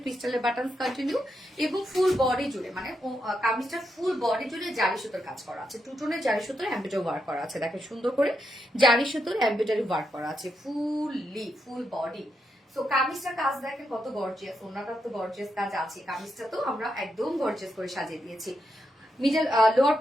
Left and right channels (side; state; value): both; normal; correlation 0.83